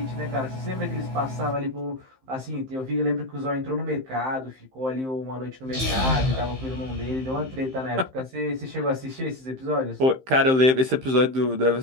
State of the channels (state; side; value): late; left; 15 ms